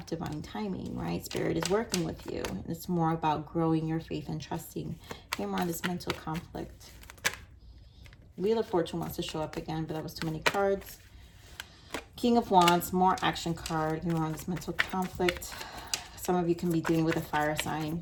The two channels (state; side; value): identical; both; correlation 1.00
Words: divine timing, right? Spirit is working with you. And it's more about growing your faith and trusting. Here more on this mental conflict. Wheel of Fortune wants to show up again, but that was too many cards. King of Wands, more action card. Here more on this mental conflict. Some of you can be dealing with a fire sign.